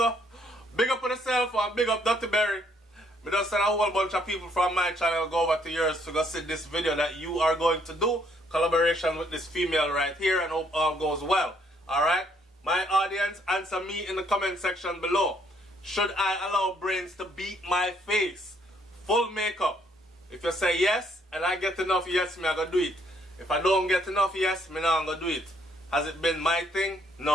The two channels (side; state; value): both; normal; correlation 0.68